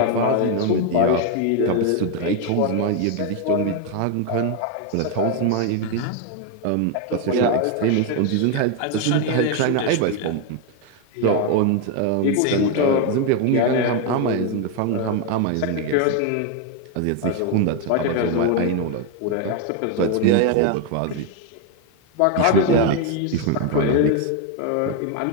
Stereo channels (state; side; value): different; both; correlation 0.01